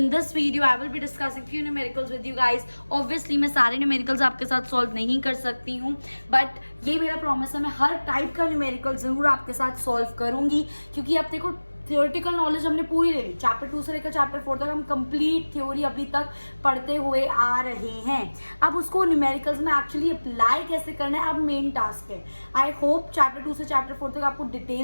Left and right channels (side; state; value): both; inverted; correlation -1.00